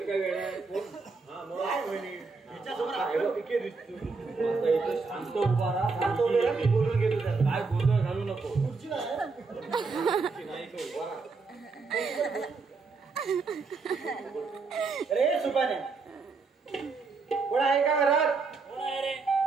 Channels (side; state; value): left; quieter; 4.3 dB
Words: काय वेळ आहे? हा, मग काय म्हणे हिच्यासमोर आपल्याला पिके दिसतो. आता इथं शांत उभा राहा. शांत उभे राहा, मी बोलून घेतो त्याला. काय गोंधळ घालू नको. खुर्ची नाही आहे. नाही इथं उभा राहा. अरे सुपाने कोण आहे का घरात? कोण आहे रे?